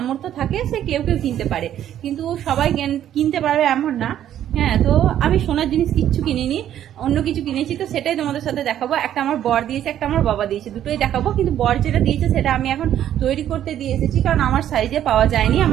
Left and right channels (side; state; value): left; quieter; 11.1 dB